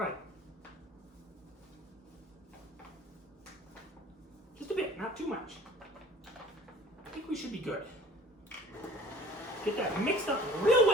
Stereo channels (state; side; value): normal; both; correlation 0.48